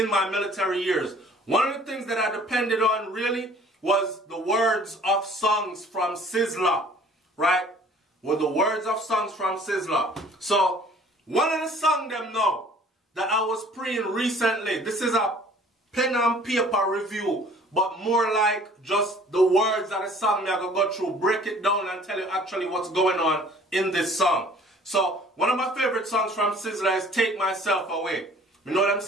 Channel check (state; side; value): normal; both; correlation 0.52